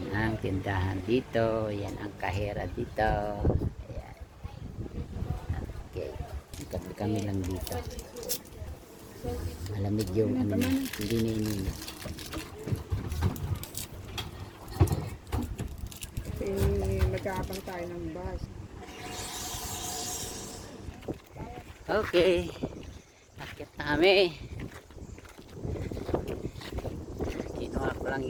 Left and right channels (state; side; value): identical; both; correlation 1.00